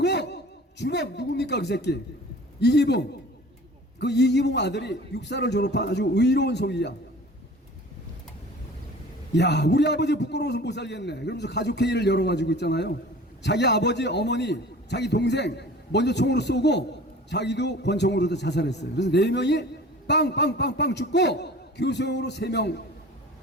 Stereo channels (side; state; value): both; normal; correlation 0.43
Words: 주범 누굽니까 그 새끼? 이기붕. 그 이기붕 아들이 육사를 졸업한 아주 의로운 소위야. 야, 우리 아버지 부끄러워서 못 살겠네. 그러면서 가족회의를 열어가지고 있잖아요. 자기 아버지, 어머니, 자기 동생 먼저 총으로 쏘고 자기도 권총으로도 자살했어요. 그래서 4명이 빵빵빵빵 죽고 교수형으로 3명